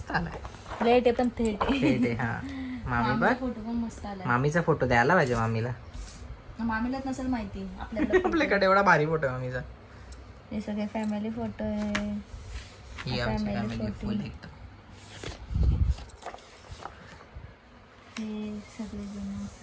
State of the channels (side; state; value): both; identical; correlation 1.00